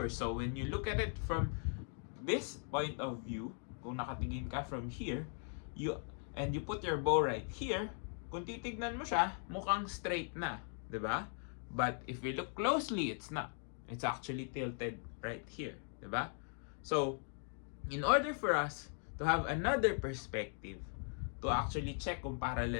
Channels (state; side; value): silent; right; 51 dB below the other